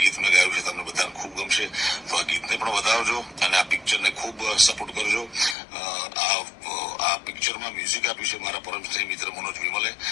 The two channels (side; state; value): right; drops out; at 5.6 s